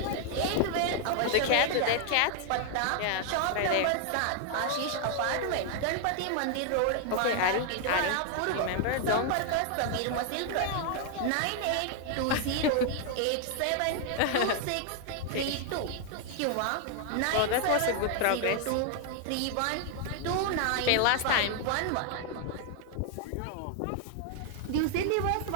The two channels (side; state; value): both; different; correlation 0.00